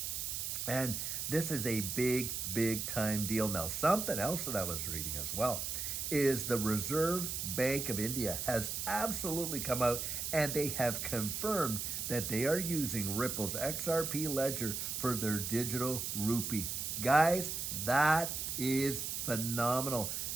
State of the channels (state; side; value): noise; right; hiss, 3 dB below the sound